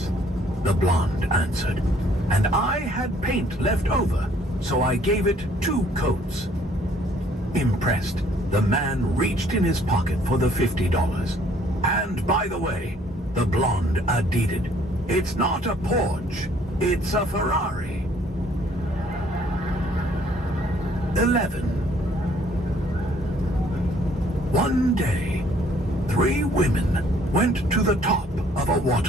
the blonde answered, "and I had paint left over, so I gave it 2 coats. Impressed, the man reached in his pocket for the $50. "And by the way," the blonde added, "it's not a Porsche, it's a Ferrari." 11. One day, 3 women went to the top of a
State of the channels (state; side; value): normal; both; correlation 0.61